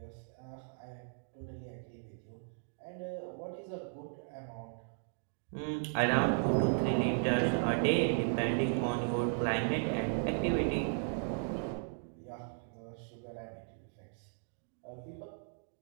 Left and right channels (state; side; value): silent; left; digital silence